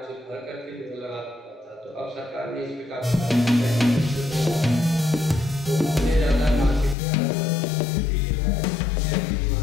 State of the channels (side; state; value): right; drops out; at 7.0 s